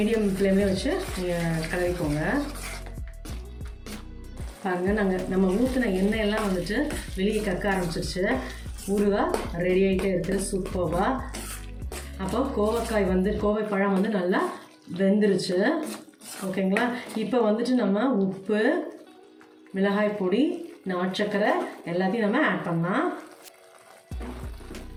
ஃப்ளேம்லேயே வச்சு நீங்கள் கலரிக்கோங்க. பாருங்கள், நம்ம ஊற்றின எண்ணெயெல்லாம் வந்துட்டு வெளியே கக்க ஆரம்பிச்சிருச்சு. ஊறுகாய் ரெடி ஆகிட்டே இருக்குது சூப்பராக. அப்போ கோவைப்பழம் வந்து நல்லா வெந்துருச்சு. ஓகேங்களா. இப்போ வந்துட்டு நம்ம உப்பு, மிளகாய் பொடி, நாட்டுச்சக்கரை எல்லாத்தையும் நம்ம ஆட் பண்ணலாம்.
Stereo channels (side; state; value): both; identical; correlation 1.00